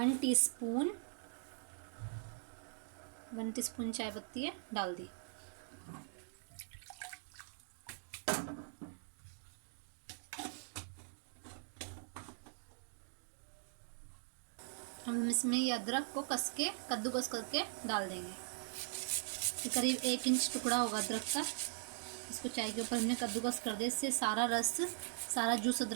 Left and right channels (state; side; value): silent; left; digital silence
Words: टीस्पून चाय पत्ती है डाल दी। हम इसमें ये अदरक को कद्दूकस करके डाल देंगे। ये करीब 1 इंच टुकड़ा होगा अदरक का। इसको चाय के ऊपर हमने कद्दूकस कर दिया, इससे सारा रस, सारा जूस